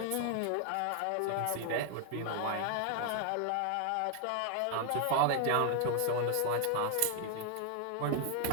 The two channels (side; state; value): both; different; correlation 0.00